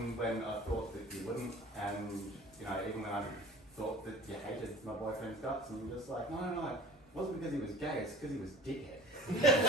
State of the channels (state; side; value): normal; both; correlation 0.42